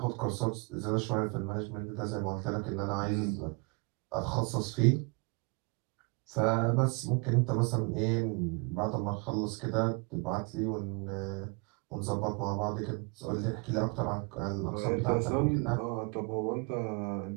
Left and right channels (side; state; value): left; quieter; 31.2 dB